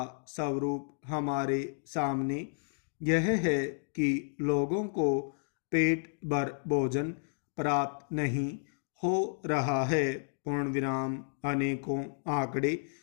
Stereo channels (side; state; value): right; silent; digital silence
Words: स्वरूप हमारे सामने यह है कि लोगों को पेट भर भोजन प्राप्त नहीं हो रहा है। पूर्ण विराम। अनेकों आंकड़े